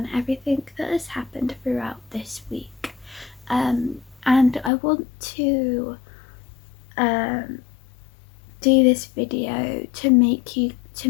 everything that has happened throughout this week, and I want to do this video to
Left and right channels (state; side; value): drops out; right; at 4.7 s